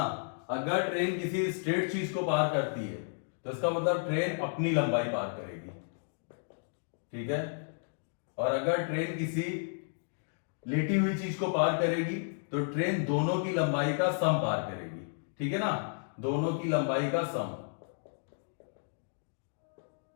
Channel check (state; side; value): silent; right; digital silence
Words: अगर ट्रेन किसी स्ट्रेट चीज को पार करती है, तो इसका मतलब ट्रेन अपनी लंबाई पार करेगी। ठीक है? और अगर ट्रेन किसी लेटी हुई चीज को पार करेगी, तो ट्रेन दोनों की लंबाई का सम पार करेगी। ठीक है ना? दोनों की लंबाई का सम,